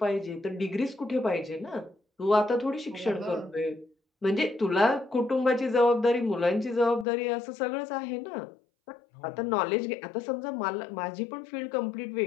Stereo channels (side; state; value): right; drops out; at 7.1 s